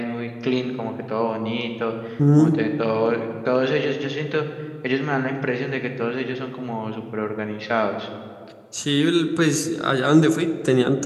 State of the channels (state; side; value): identical; both; correlation 1.00